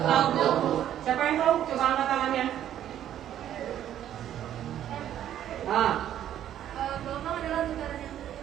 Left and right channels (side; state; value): left; quieter; 11.1 dB